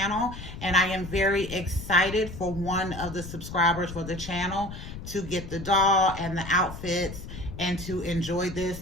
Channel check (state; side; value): noise; left; rumble, 11 dB below the sound